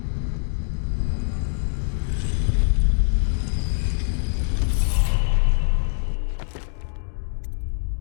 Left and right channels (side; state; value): right; silent; digital silence